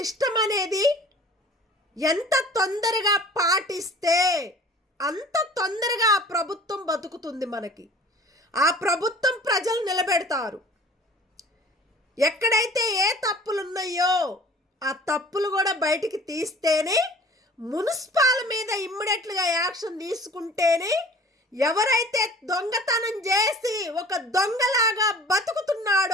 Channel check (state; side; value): normal; both; correlation 0.47